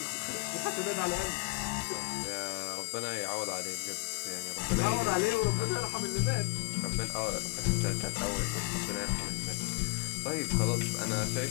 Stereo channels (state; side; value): quieter; right; 30.2 dB